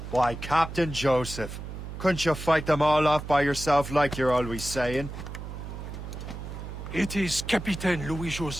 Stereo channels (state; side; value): noise; right; hum, 9 dB below the sound